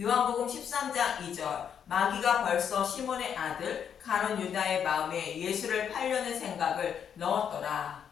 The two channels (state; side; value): quieter; right; 8.1 dB